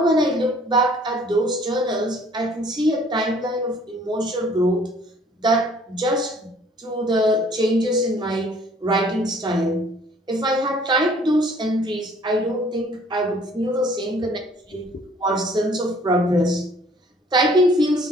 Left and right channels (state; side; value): normal; both; correlation 0.57